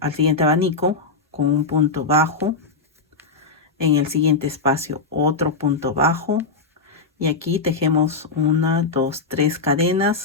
abanico con un punto bajo. En el siguiente espacio otro punto bajo. Y aquí tejemos 1, 2, 3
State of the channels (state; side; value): quieter; right; 4.0 dB